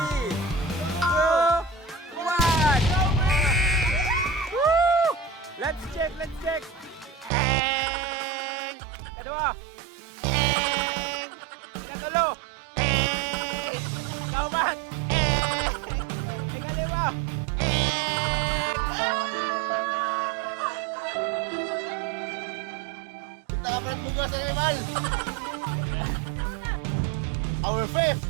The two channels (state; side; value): drops out; left; at 7.3 s